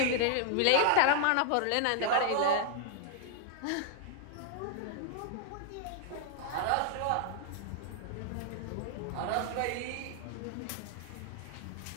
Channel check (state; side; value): different; both; correlation 0.00